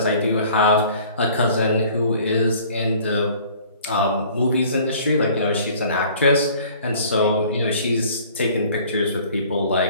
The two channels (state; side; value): inverted; both; correlation -0.52